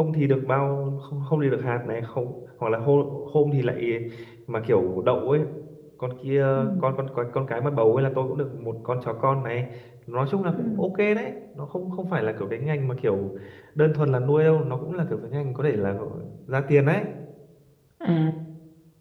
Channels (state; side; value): identical; both; correlation 1.00